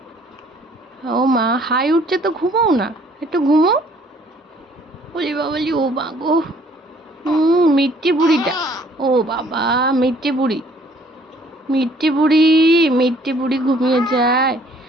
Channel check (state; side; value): normal; both; correlation 0.60